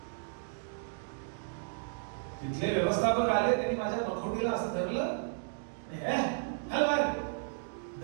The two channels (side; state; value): left; silent; digital silence